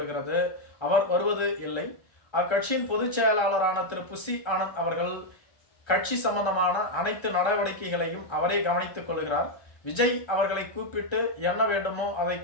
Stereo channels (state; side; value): late; right; 1.3 ms